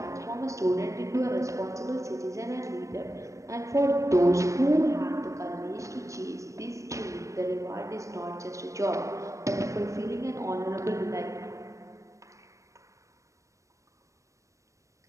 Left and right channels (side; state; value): left; late; 0.15 ms